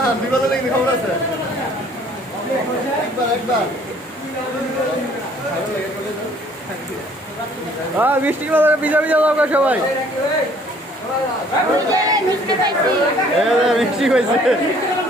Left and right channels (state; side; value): normal; both; correlation 0.58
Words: মিষ্টি ভিজা ভিজা দাও সবাই। মিষ্টি পাইছি। মিষ্টি হয়েছে।